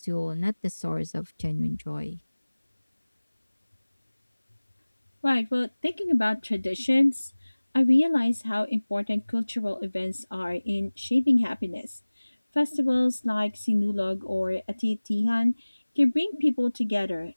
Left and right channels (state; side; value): inverted; both; correlation -1.00